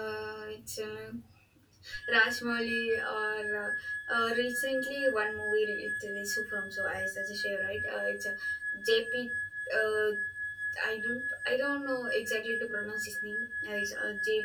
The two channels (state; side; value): identical; both; correlation 1.00